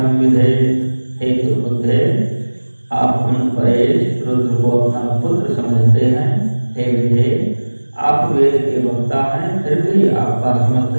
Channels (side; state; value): both; inverted; correlation -1.00